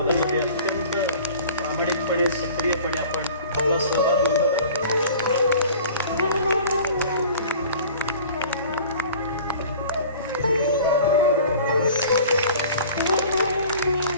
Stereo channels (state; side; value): inverted; both; correlation -0.45